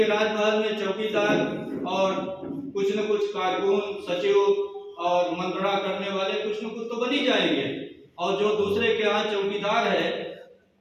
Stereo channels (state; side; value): identical; both; correlation 1.00